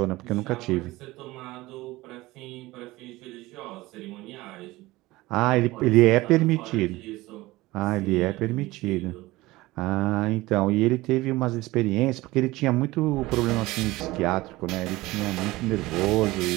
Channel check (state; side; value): quieter; left; 19.5 dB